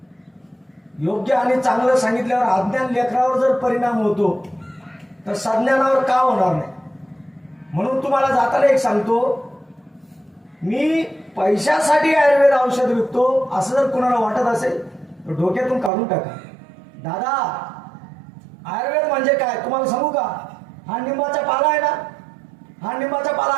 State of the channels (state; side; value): drops out; left; at 15.9 s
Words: योग्य आणि चांगलं सांगितल्यावर अज्ञान लेकरावर जर परिणाम होतो तर सज्ञानावर का होणार नाही. म्हणून तुम्हाला जाताना एक सांगतो, मी पैशासाठी आयुर्वेद औषध विकतो असं जर कुणाला वाटत असेल तर डोक्यातून काढून टाका. दादा, आयुर्वेद म्हणजे काय तुम्हाला सांगू का? हा निंबाचा पाला आहे ना, हा निंबाचा पाला